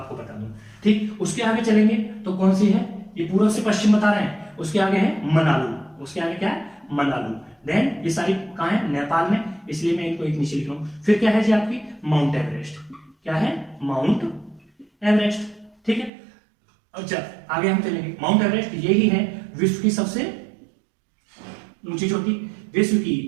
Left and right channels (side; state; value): left; drops out; at 16.1 s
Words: बता दूं, ठीक। उसके आगे चलेंगे तो कौन सी है, ये पूर्व से पश्चिम बता रहे हैं, उसके आगे है मनालू, उसके आगे क्या है, मनालू। देन ये सारी कहाँ है, नेपाल में, इसलिए मैं इनको एक नीचे लिख रहा हूं। फिर क्या है जी आपकी माउंट एवरेस्ट, क्या है, माउंट एवरेस्ट, ठीक है। अच्छा आगे हम चलेंगे, माउंट एवरेस्ट यही है विश्व की सबसे ऊंची चोटी, विश्व की